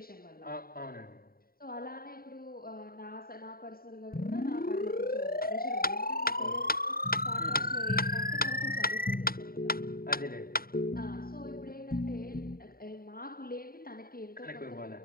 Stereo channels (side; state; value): right; late; 0.43 ms